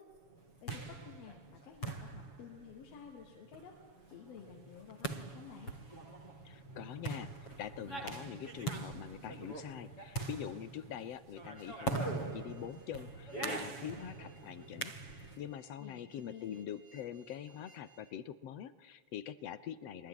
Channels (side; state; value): right; late; 7.2 ms